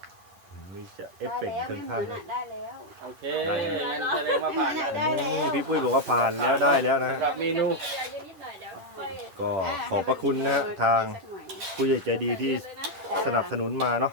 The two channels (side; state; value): left; late; 10 ms